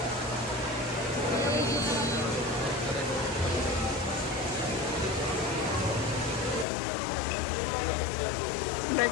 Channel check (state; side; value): drops out; right; at 6.7 s